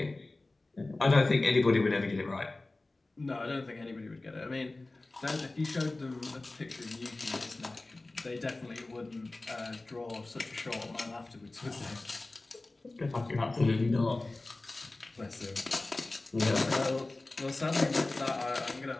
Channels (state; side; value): quieter; right; 3.0 dB